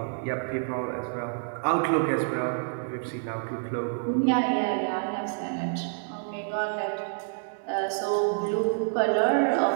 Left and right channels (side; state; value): left; silent; digital silence